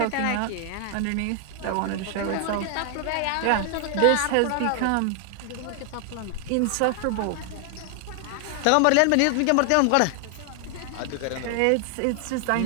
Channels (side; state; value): both; different; correlation 0.00